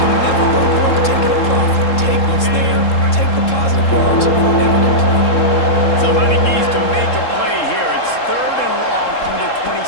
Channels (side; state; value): right; late; 3.7 ms